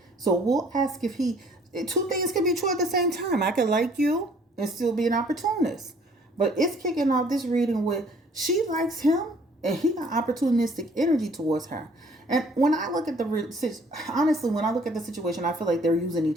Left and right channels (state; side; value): normal; both; correlation 0.58